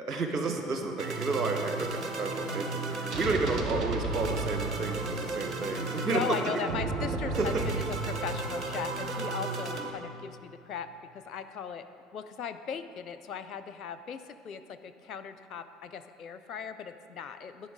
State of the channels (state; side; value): normal; both; correlation 0.43